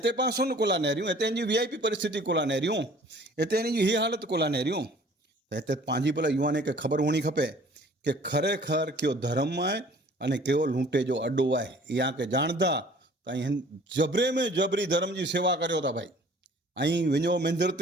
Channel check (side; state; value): both; normal; correlation 0.52